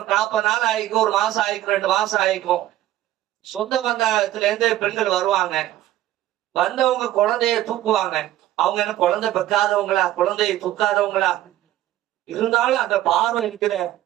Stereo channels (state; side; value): quieter; left; 13.9 dB